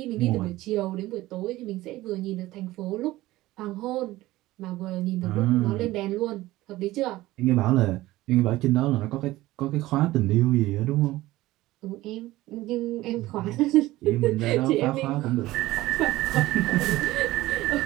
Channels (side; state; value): left; quieter; 17.3 dB